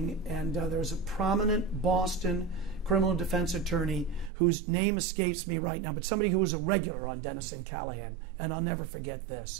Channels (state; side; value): drops out; left; at 4.3 s